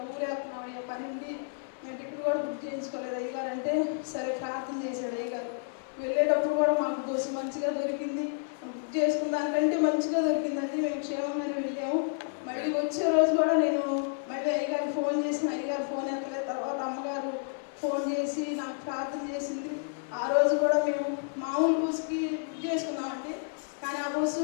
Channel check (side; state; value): right; silent; digital silence